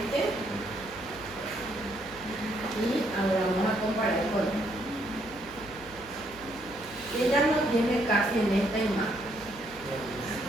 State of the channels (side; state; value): left; noise; hum, 20 dB below the sound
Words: y ahora vamos a comparar con él. Ella no tiene casi en esta imagen,